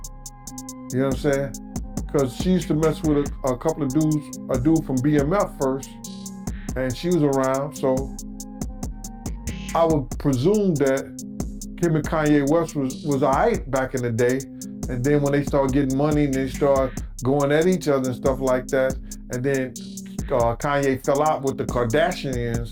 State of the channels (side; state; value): both; identical; correlation 1.00